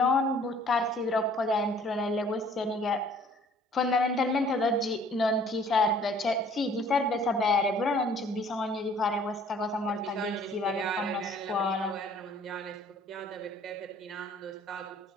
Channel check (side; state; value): both; normal; correlation 0.55